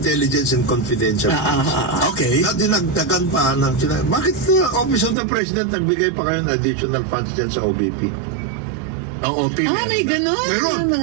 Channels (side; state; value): left; drops out; at 5.2 s